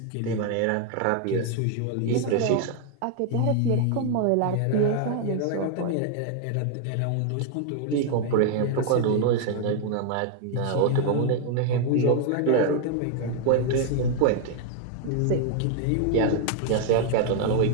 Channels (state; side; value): different; both; correlation 0.00